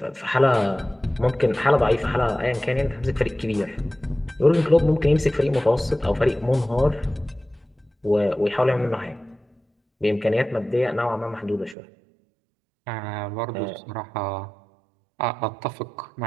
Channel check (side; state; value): left; drops out; at 11.8 s